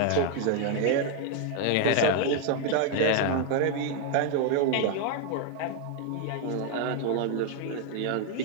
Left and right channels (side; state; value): both; different; correlation 0.01